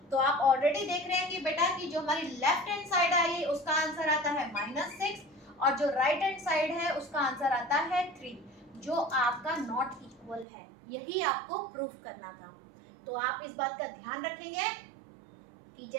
तो आप ऑलरेडी देख रहे हैं कि बेटा कि जो हमारी लेफ्ट हैंड साइड आई है उसका आंसर आता है -6 और जो राइट हैंड साइड है उसका आंसर आता है 3, जो आपका नॉट इक्वल है। यही आपको प्रूफ करना था। तो आप इस बात का ध्यान रखेंगे कि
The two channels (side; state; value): left; drops out; at 10.5 s